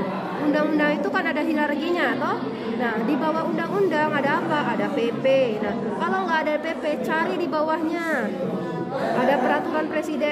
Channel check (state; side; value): identical; both; correlation 1.00